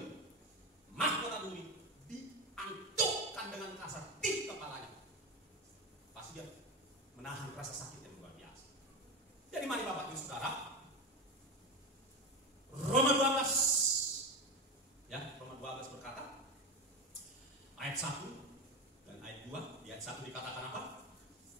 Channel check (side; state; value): both; normal; correlation 0.19